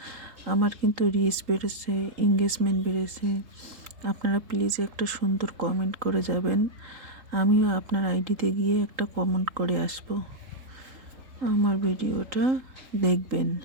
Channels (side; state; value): left; late; 3.8 ms